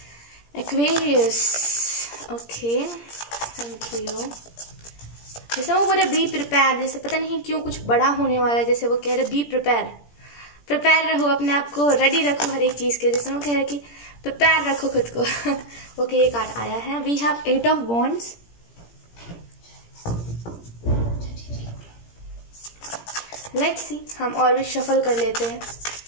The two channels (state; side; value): late; right; 17 ms